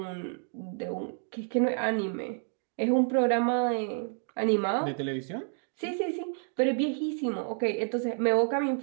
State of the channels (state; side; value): silent; left; 58 dB below the other